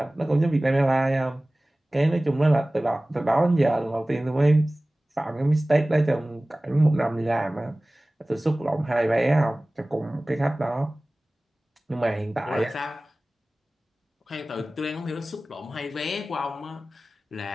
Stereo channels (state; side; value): normal; both; correlation 0.98